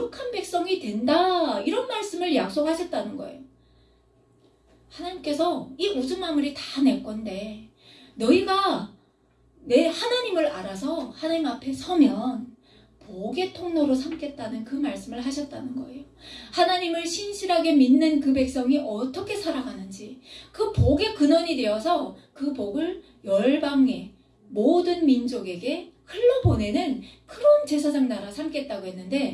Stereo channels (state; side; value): identical; both; correlation 1.00